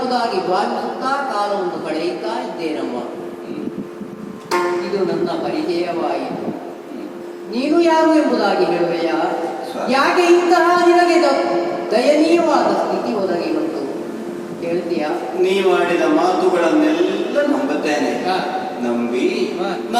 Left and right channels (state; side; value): identical; both; correlation 1.00